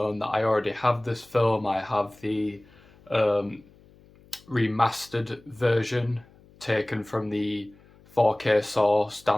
that I already have this film. I have the remastered version taken from the 4K source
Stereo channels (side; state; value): left; noise; hum, 27 dB below the sound